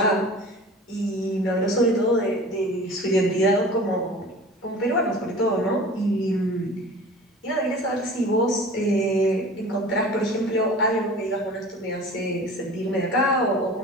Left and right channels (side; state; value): both; normal; correlation 0.41